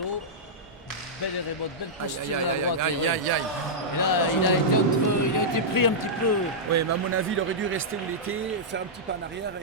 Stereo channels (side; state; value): both; normal; correlation -0.10